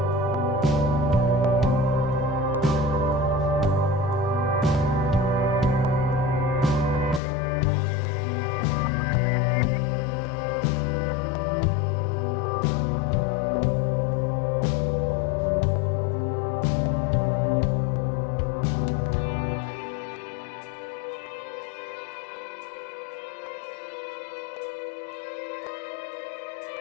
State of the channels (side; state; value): right; drops out; at 7.2 s